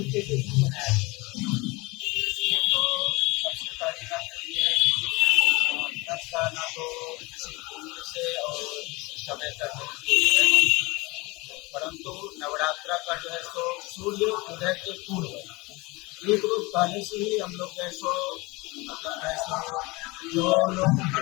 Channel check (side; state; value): right; quieter; 24.1 dB